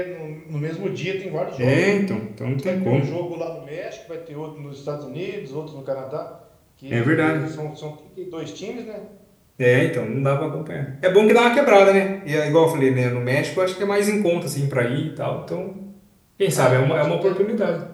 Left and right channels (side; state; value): both; identical; correlation 1.00